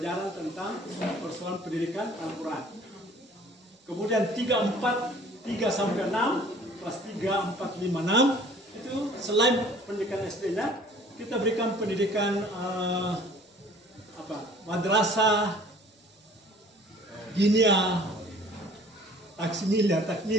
tentang persoalan pendidikan Al-Quran. Kemudian 3 sampai 6, kelas 3, 4, 5, 6 itu selain pendidikan SD-nya, kita berikan pendidikan madrasah, dinia,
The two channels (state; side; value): normal; both; correlation 0.52